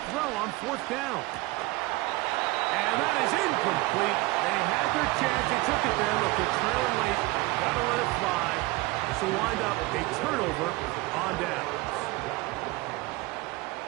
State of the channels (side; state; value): left; quieter; 21.7 dB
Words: throw on 4th down. And that is incomplete. They had their chance. They took it there. Look, they're trailing late. Got to let it fly. This will wind up a turnover on downs.